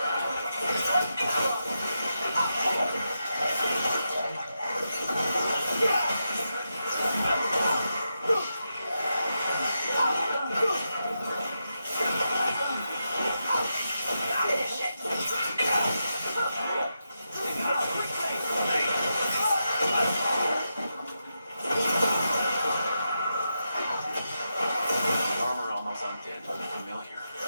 Armor almost undead, but familiar.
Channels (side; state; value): both; inverted; correlation -0.87